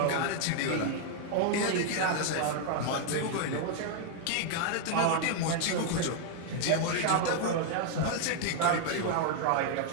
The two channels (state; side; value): different; both; correlation 0.00